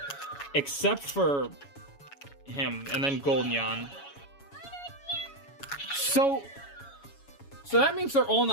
Except for him, and then Golden Yan. So that means they're all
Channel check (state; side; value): late; right; 7.1 ms